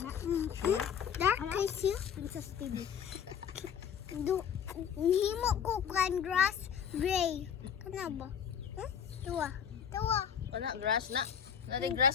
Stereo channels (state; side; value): quieter; right; 8.0 dB